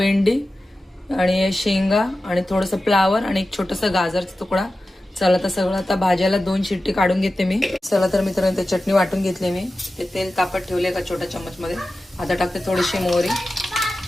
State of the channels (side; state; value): both; normal; correlation 0.94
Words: आणि शेंगा आणि थोडंसं फ्लावर आणि एक छोटासा गाजरचा तुकडा। चला तर सगळं आता भाज्याला 2 शिट्टी काढून घेते मी। चला तर मित्रांनो, ते चटणी वाटून घेतली मी, ते तेल तापत ठेवले का छोट्या चम्मच मध्ये। आता टाकते थोडीशी मोहरी,